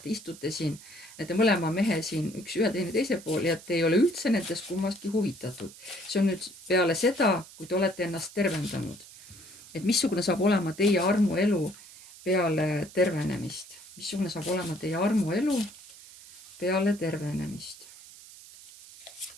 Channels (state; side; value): noise; right; hiss, 19 dB below the sound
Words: istute siin, nende mõlema mehe siin, üks ühe teine teise pool ja te ei ole üldse nendest kummastki huvitatud. See on nüüd peale seda, kui te olete ennast tervendanud. et missugune saab olema teie armuelu peale tervenemist. Missugune saab olema teie armuelu peale tervenemist.